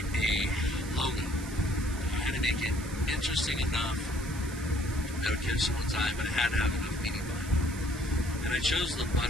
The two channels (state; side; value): noise; right; hiss, 14 dB below the sound